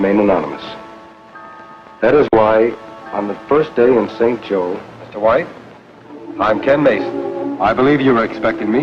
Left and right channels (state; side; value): identical; both; correlation 1.00